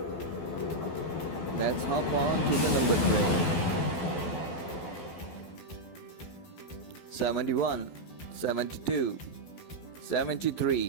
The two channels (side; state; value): right; late; 12 ms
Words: Let's hop on to the number train. 71, 72,